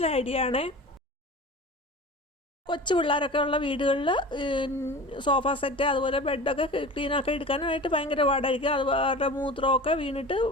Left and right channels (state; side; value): normal; both; correlation 0.36